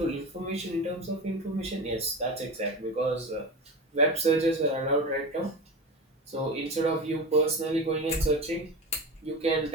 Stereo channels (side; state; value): both; normal; correlation 0.25